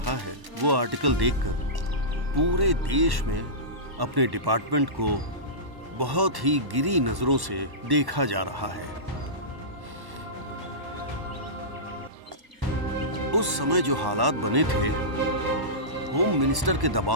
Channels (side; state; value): left; late; 1.1 ms